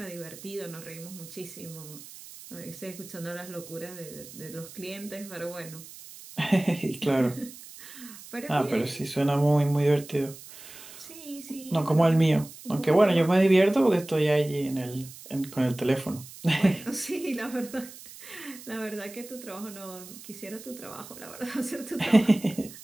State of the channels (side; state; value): right; noise; hiss, 16 dB below the sound